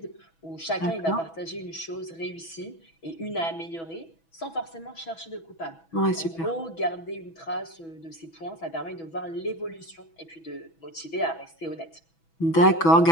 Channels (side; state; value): right; late; 6.1 ms